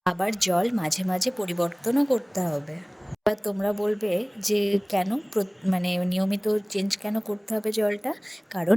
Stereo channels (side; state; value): both; identical; correlation 1.00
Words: আবার জল মাঝে মাঝে পরিবর্তনও করতে হবে। এবার তোমরা বলবে যে কেন নিয়মিত চেঞ্জ কেন করতে হবে জলটা? কারণ